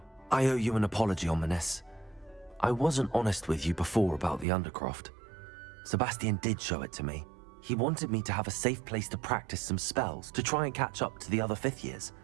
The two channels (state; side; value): drops out; left; at 4.5 s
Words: I owe you an apology, Ominous. I wasn't honest with you before about the Undercroft. Sebastian did show it to me. He wanted me to have a safe place to practice some spells, to try and catch up to the other fifth years.